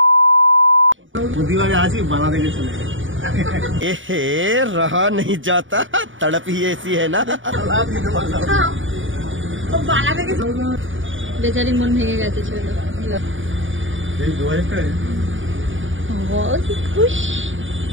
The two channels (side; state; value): left; late; 0.57 ms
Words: দিবারে আছি বালা দেখে চলে एहे रहा नहीं जाता तड़प ही ऐसी है ना बेचारी मन भेगे गए ছেলে बहुत ही खुश